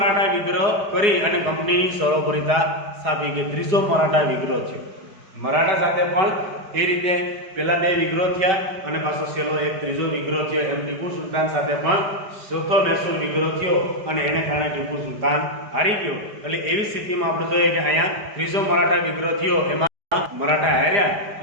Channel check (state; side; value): late; left; 4.8 ms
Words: વિગ્રહ કરી અને કંપનીની સરોપરિતા સ્થાપી. કે ત્રીજો મરાઠા વિગ્રહ છે. મરાઠા સાથે પણ એ રીતે પેલા બે વિગ્રહ થયા અને પાછો છેલ્લો એક ત્રીજો વિગ્રહ થયો. એમ ટીપુ સુલતાન સાથે પણ ચોથો મૈસૂર વિગ્રહ થયો અને એને કારણે ટીપુ સુલતાન હારી ગયો. એટલે એવી સ્થિતિમાં આપણે જોઈએ કે અહીંયા ત્રીજો મરાઠા વિગ્રહ થયો, એમાં મરાઠા હાર્યા